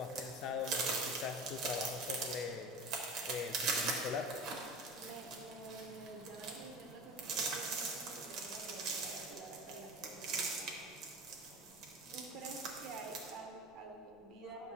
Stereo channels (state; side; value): noise; left; rumble, 29 dB below the sound